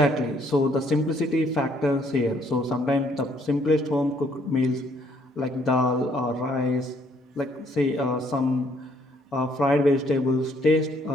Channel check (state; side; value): normal; both; correlation 0.66